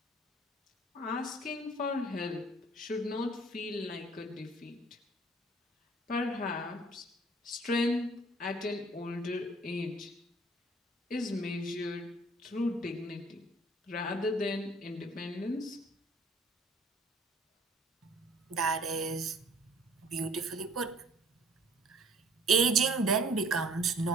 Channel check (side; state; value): both; normal; correlation 0.54